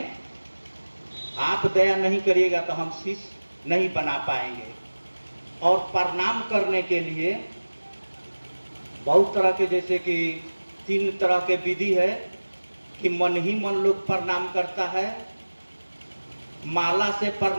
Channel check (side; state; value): both; inverted; correlation -1.00